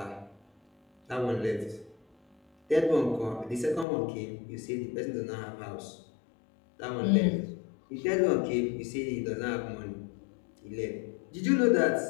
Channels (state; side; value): drops out; right; at 3.9 s